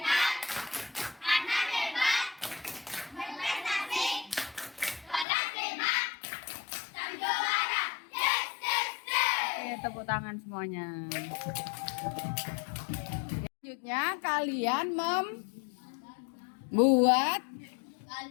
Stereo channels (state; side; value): drops out; right; at 5.2 s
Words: Tepuk tangan semuanya. Selanjutnya kalian membuat